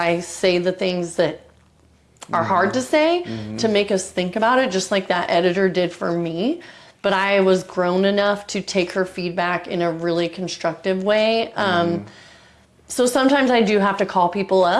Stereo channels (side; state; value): both; identical; correlation 1.00